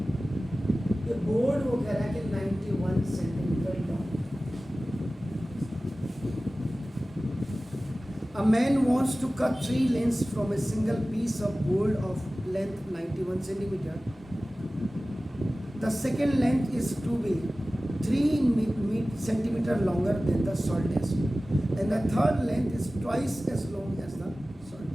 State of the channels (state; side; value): normal; both; correlation 0.97